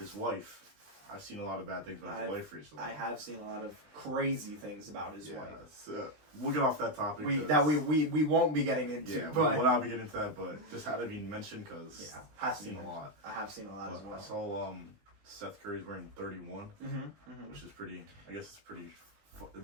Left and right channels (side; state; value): left; late; 19 ms